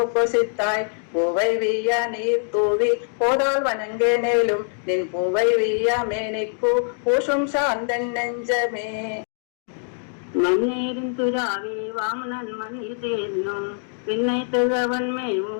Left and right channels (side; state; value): right; silent; 55 dB below the other